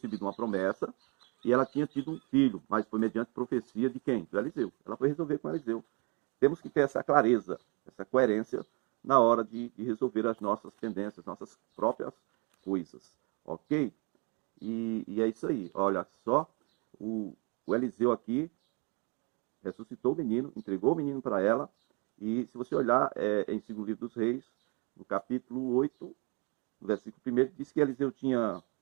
uma promessa e ela tinha tido um filho, mas foi mediante profecia de quem? Do Eliseu. Ela foi resolver com Eliseu. Temos que ter essa clareza, essa coerência na hora de resolver as nossas pendências, nossas próprias coisas. Ok? E é isso aí. Olha só, o Eliseu aqui ressuscitou o menino, entregou o menino para ela. E se você olhar em 2 Livro dos Reis, no capítulo 8, no versículo 1, diz que Eliseu tinha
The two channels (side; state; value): left; quieter; 32.4 dB